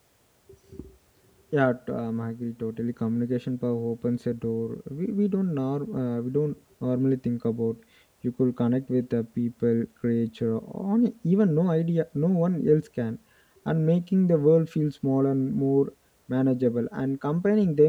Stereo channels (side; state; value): both; identical; correlation 1.00